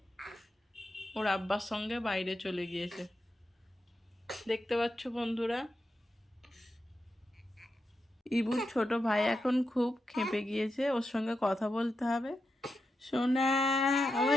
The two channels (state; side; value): normal; both; correlation 0.88